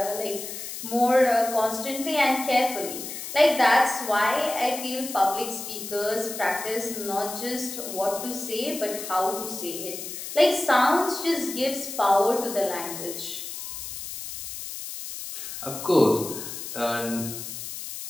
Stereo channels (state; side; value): noise; left; hiss, 8 dB below the sound